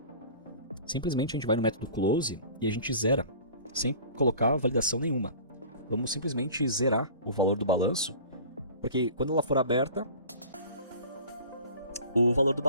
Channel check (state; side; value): inverted; both; correlation -0.43